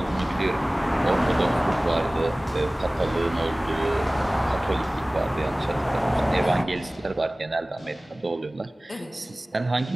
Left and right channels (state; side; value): normal; both; correlation 0.98